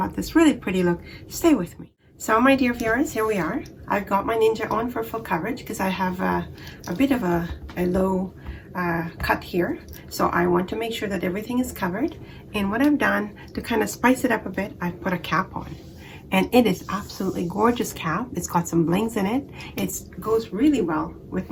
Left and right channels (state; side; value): identical; both; correlation 1.00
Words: this really pretty look, stay with me. So my dear viewers, here we are. I've got my ninja on for full coverage because I have a bit of a low cut here. So I want to make sure that everything is covered. And what I've done to kind of spice it up a bit, I've put a cap on. And it is absolutely gorgeous cap. It's got some blings in it. It goes really well with